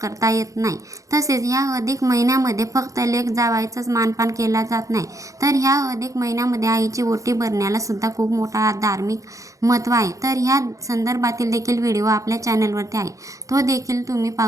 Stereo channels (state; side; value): late; left; 0.16 ms